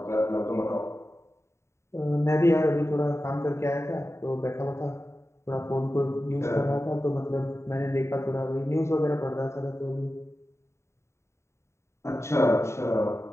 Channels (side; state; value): right; late; 0.13 ms